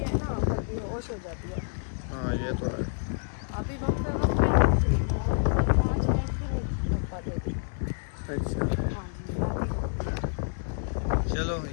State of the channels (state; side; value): silent; right; digital silence